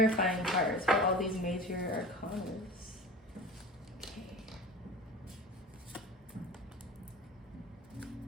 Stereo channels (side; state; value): both; normal; correlation 0.35